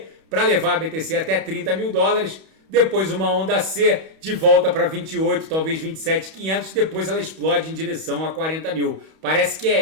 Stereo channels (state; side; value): late; left; 31 ms